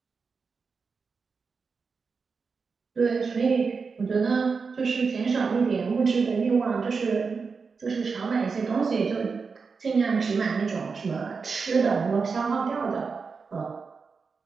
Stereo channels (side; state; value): left; quieter; 5.0 dB